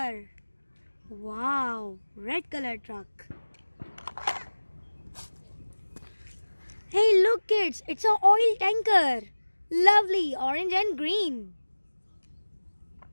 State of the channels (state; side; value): inverted; both; correlation -1.00